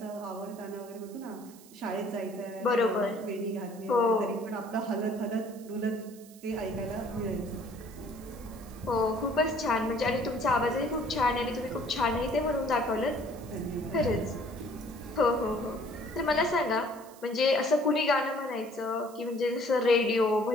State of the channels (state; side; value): noise; right; hiss, 22 dB below the sound